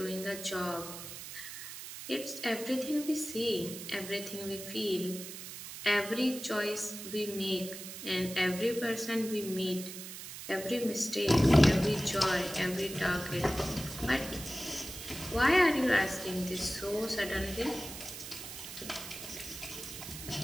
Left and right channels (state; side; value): noise; right; hiss, 10 dB below the sound